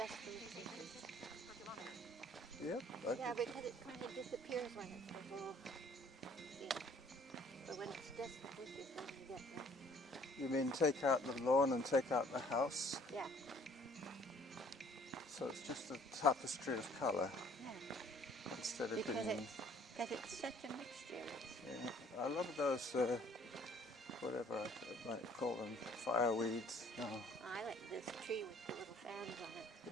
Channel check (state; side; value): normal; both; correlation 0.57